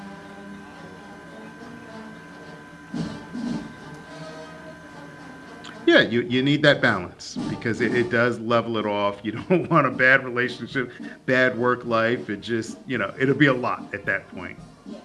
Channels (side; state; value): both; identical; correlation 1.00